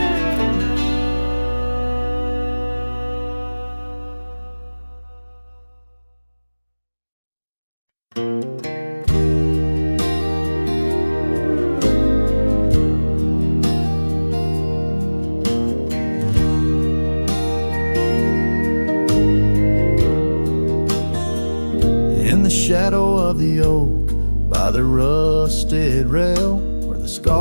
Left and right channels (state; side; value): inverted; both; correlation -1.00